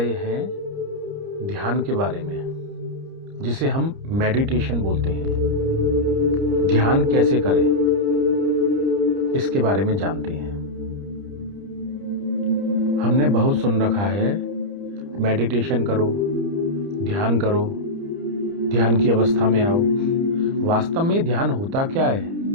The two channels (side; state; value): left; late; 30 ms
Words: हैं ध्यान के बारे में, जिसे हम मेडिटेशन बोलते हैं। ध्यान कैसे करें, इसके बारे में जानते हैं। हमने बहुत सुन रखा है, मेडिटेशन करो, ध्यान करो, ध्यान की अवस्था में आओ। वास्तव में ध्यान होता क्या है